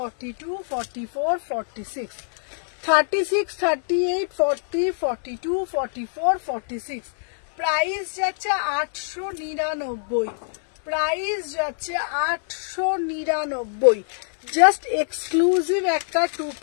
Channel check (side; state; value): right; silent; 57 dB below the other